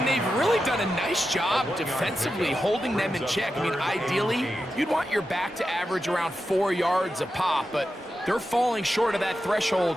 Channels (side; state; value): both; normal; correlation 0.90